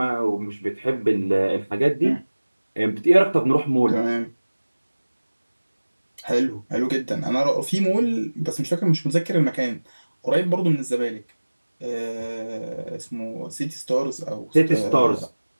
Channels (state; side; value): inverted; both; correlation -1.00